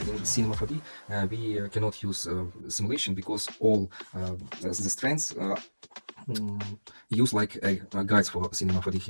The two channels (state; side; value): inverted; both; correlation -1.00